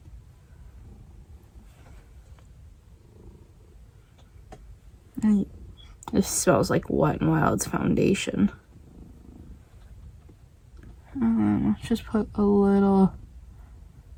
This smells like Wet n Wild's foundation. Let's just put a little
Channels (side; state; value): both; identical; correlation 1.00